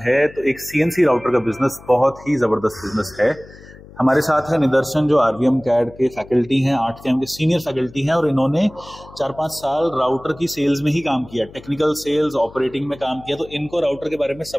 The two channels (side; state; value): left; noise; hum, 20 dB below the sound